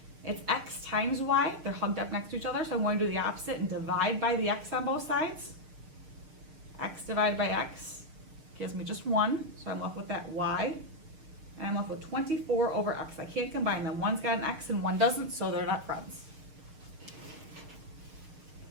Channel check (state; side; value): late; left; 6.3 ms